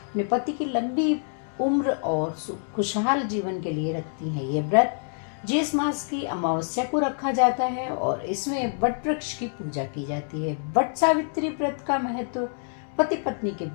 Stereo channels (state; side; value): silent; right; 61 dB below the other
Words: पति की लंबी उम्र और खुशहाल जीवन के लिए रखती हैं, ये व्रत ज्येष्ठ मास की अमावस्या को रखा जाता है और इसमें वट वृक्ष की पूजा की जाती है। वट सावित्री व्रत का महत्व पति पत्नी के